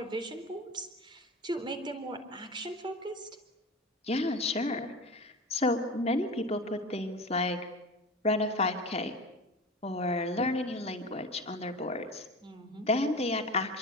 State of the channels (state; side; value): normal; both; correlation 0.31